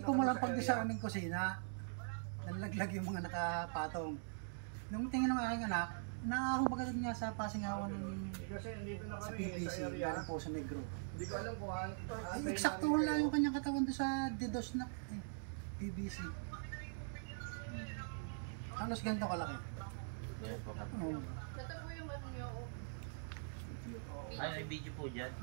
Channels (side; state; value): left; silent; digital silence